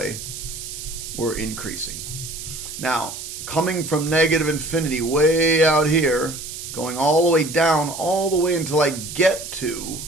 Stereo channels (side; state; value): right; noise; hiss, 9 dB below the sound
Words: we're increasing. Now, coming from negative infinity way out here, going all the way down, all the way until I get to